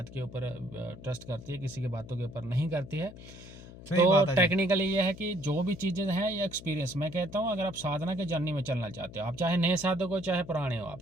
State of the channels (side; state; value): left; noise; hum, 16 dB below the sound